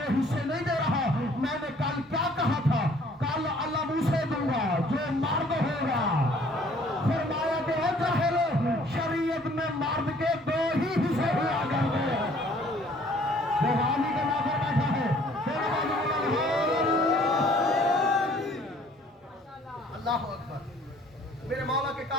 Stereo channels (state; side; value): normal; both; correlation 0.57